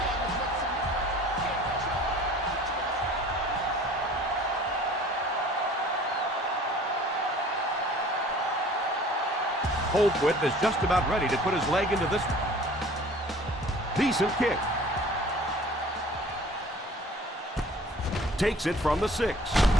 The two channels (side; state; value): both; normal; correlation 0.49